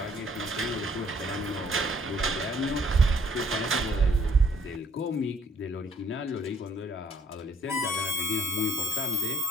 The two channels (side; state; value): both; normal; correlation 0.64